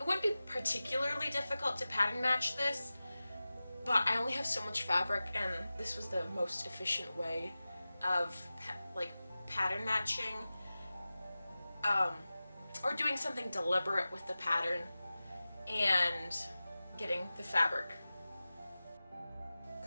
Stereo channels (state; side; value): inverted; both; correlation -0.96